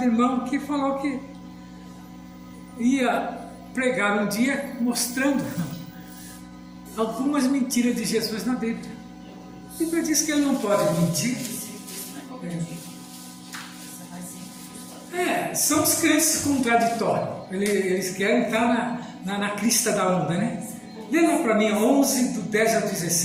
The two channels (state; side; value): identical; both; correlation 1.00